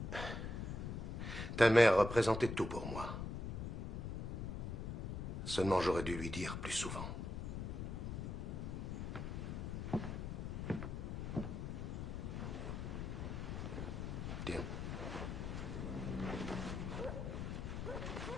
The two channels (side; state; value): left; noise; rumble, 4 dB below the sound